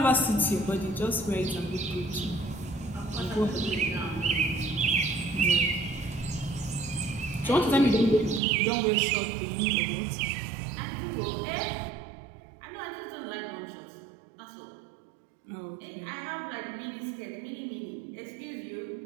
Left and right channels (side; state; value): left; drops out; at 8.4 s